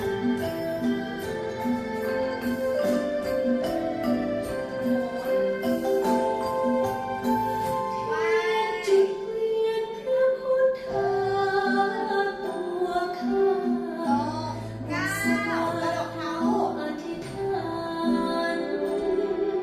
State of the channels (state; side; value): identical; both; correlation 1.00